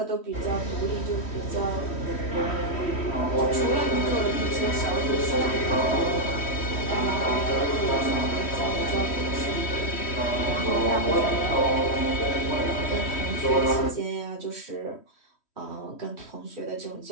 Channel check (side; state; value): right; late; 3.1 ms